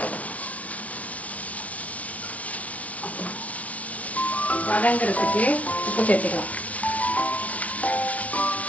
வதங்கிறதுக்கு உப்பு சேர்த்துக்கலாம்.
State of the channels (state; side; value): late; right; 0.069 ms